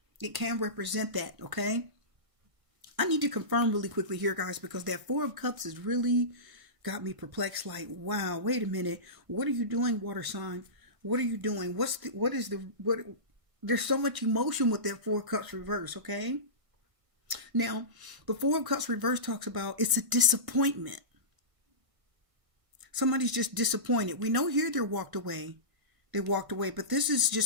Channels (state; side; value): late; left; 1.5 ms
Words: It can represent that, okay? I need to confirm really quickly here, guys, because that 4 of Cups has really got me perplexed. Like, wow, wait a minute. What are you doing, water sign? What are you doing? There's so much emotion with that 4 of Cups reverse, okay? Now, the 4 of Cups reverse talks about it's a disappointment. Somebody's just disappointed. We know here they walked away, but this is